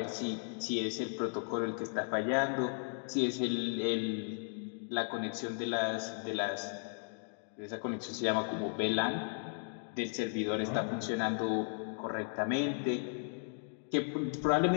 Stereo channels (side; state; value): right; silent; 54 dB below the other